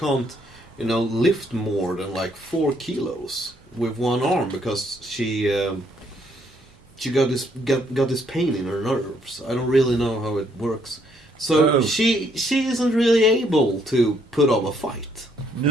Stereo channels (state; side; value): normal; both; correlation 0.70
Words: you know, lift more than like 4 kilos with one arm because she got this pain in her nerves. I don't really know how it works. So she isn't really able to put up a fight.